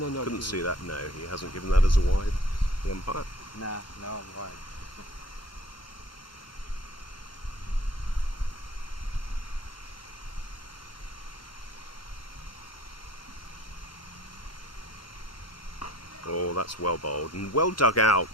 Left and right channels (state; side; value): normal; both; correlation 0.49